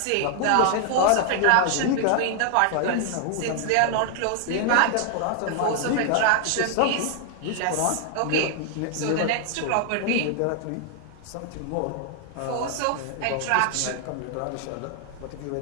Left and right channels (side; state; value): both; different; correlation 0.00